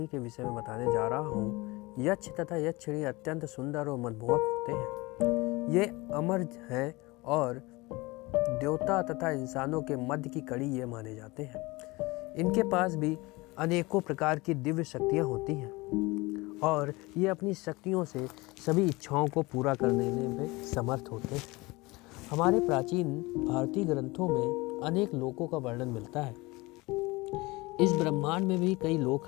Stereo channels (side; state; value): right; quieter; 23.0 dB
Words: के विषय में बताने जा रहा हूँ। यक्ष तथा यक्षिणी अत्यंत सुंदर और मनमोहक होते हैं। ये अमर हैं और देवता तथा इंसानों के मध्य की कड़ी ये माने जाते हैं। इनके पास भी अनेकों प्रकार की दिव्य शक्तियाँ होती हैं और ये अपनी शक्तियों से सभी इच्छाओं को पूरा करने में समर्थ होते हैं। हमारे प्राचीन भारतीय ग्रंथों में अनेक लोकों का वर्णन मिलता है। इस ब्रह्मांड में भी कई लोक